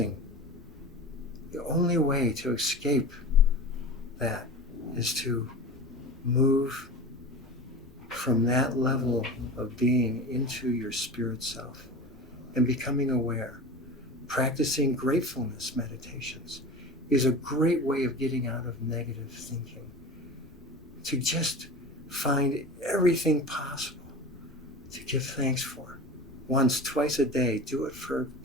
The only way to escape that is to move from that level of being into your spirit self and becoming aware. Practicing gratefulness meditations is a great way of getting out of negative thinking, to just find everything possible to give thanks for. Once, twice a day, do it for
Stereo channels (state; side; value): normal; both; correlation 0.33